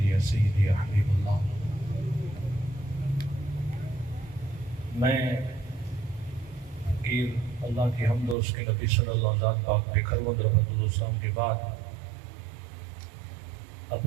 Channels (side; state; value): left; drops out; at 8.3 s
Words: یا سیدی یا حبیب اللہ۔ میں فقیر اللہ کی حمد اور اس کے نبی صلی اللہ علیہ وسلم پاک پہ خرود رحمت اللہ السلام کے بعد